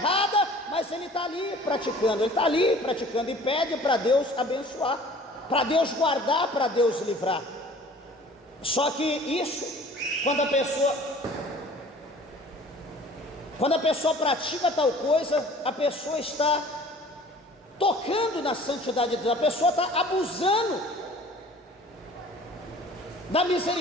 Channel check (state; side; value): normal; both; correlation 0.48